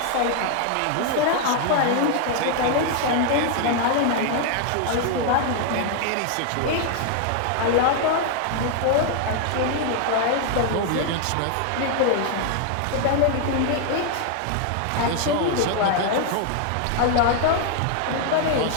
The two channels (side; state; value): both; different; correlation 0.00